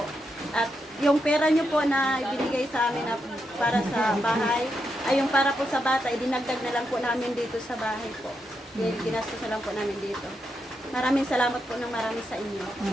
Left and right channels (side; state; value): both; normal; correlation 0.83